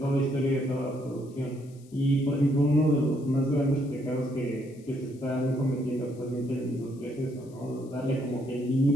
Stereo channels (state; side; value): noise; left; hiss, 28 dB below the sound